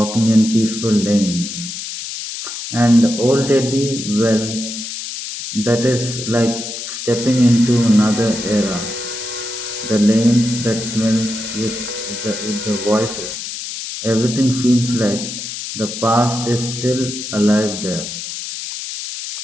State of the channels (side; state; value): left; noise; hiss, 7 dB below the sound